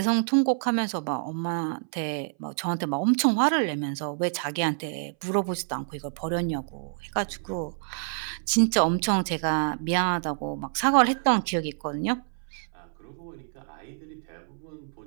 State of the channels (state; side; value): silent; left; 60 dB below the other